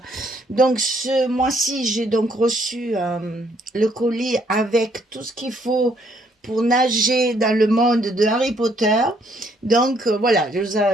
Donc ce mois-ci, j'ai donc reçu le colis avec tout ce qu'il faut pour nager dans le monde de Harry Potter. Donc voilà,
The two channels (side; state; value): both; normal; correlation 0.68